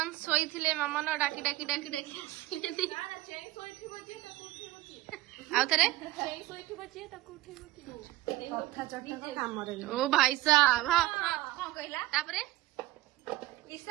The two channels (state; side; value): quieter; left; 17.2 dB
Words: शोले मामन डाकी डाकी डाकी डाकी आउ थे ओ भाई साहब